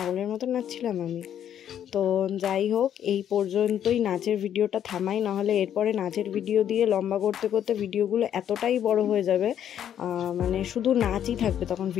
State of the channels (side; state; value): right; quieter; 9.9 dB